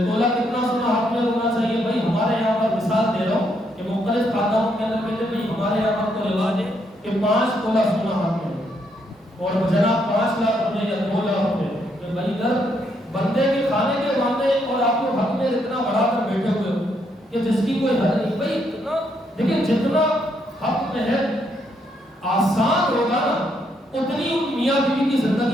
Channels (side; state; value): both; normal; correlation 0.75